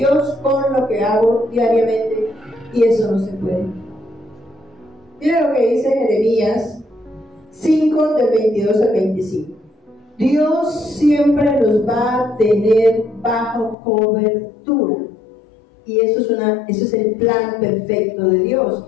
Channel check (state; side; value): drops out; right; at 13.8 s